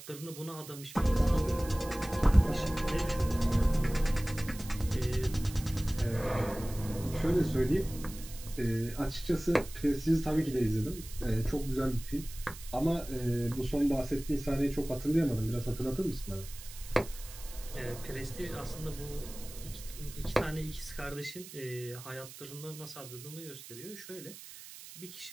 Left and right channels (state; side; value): noise; right; hiss, 15 dB below the sound